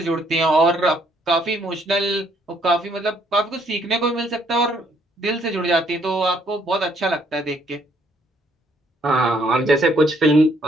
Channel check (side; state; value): both; normal; correlation 0.67